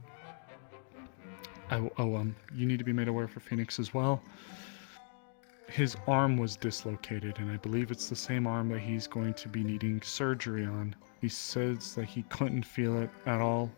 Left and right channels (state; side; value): silent; right; 53 dB below the other